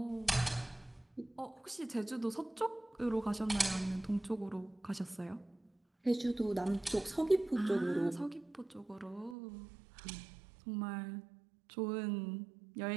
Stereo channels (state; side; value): drops out; left; at 9.3 s